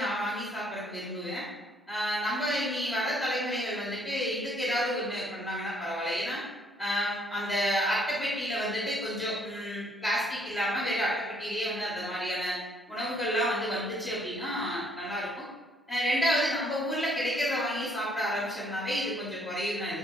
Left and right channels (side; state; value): both; normal; correlation 0.65